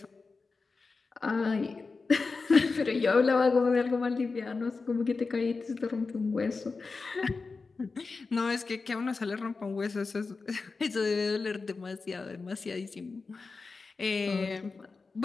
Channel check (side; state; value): right; quieter; 4.2 dB